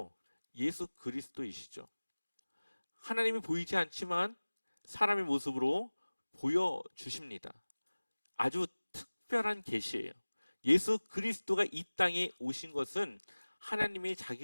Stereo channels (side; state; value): both; inverted; correlation -1.00